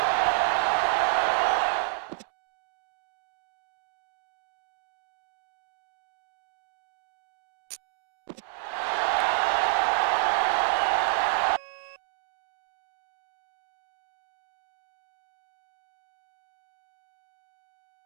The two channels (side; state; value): left; silent; digital silence